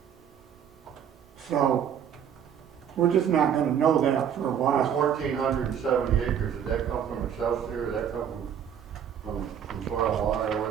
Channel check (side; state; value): left; quieter; 8.7 dB